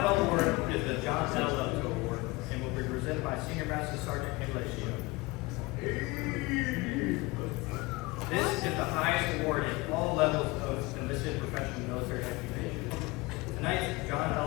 award is the John L. Award and will be presented by Senior Master Sergeant Estacio. This is the highest award in all levels of enlisted professional military occupation. Tonight's John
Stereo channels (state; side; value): quieter; right; 23.0 dB